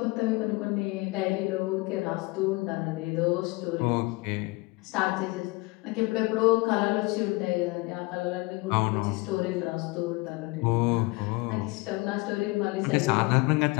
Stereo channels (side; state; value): right; quieter; 24.6 dB